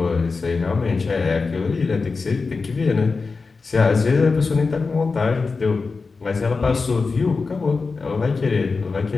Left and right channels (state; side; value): quieter; right; 4.3 dB